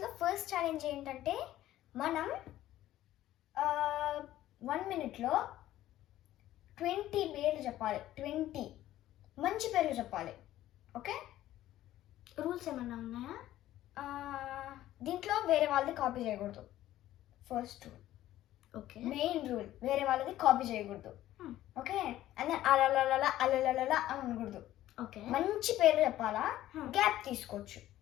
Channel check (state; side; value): quieter; right; 14.0 dB